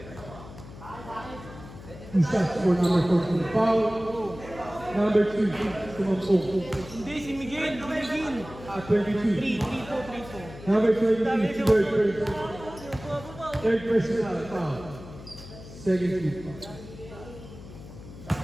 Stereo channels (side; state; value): left; noise; hum, 15 dB below the sound